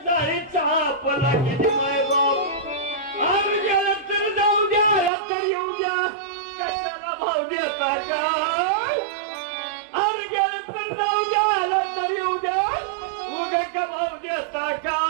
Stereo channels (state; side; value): drops out; left; at 5.1 s